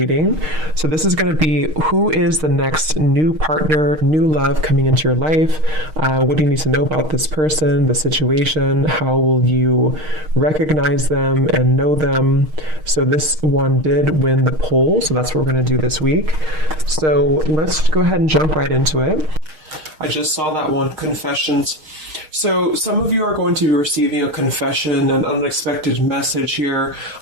So this is going to be who is the next new partner, new love coming into your life. What do you need to know about this person, the situation? How will you recognize them and know them? So this one did win the poll, so that's what we're going to do this week. So let's go ahead and jump right into it. I just saw that one, confessions. So some of you are going to be receiving a confession, an unexpected message here.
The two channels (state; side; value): late; left; 6.4 ms